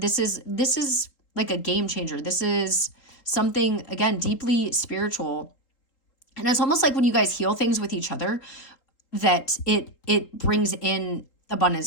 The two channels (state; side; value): late; right; 3.8 ms